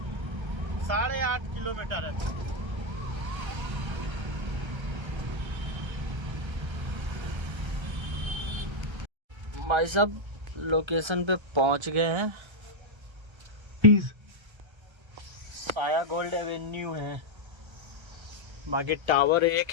8.5 किलोमीटर है। भाई साहब लोकेशन पे पहुंच गए हैं। साया गोल्ड एवेन्यू है, बाकी टावर एक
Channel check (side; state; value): left; late; 1.3 ms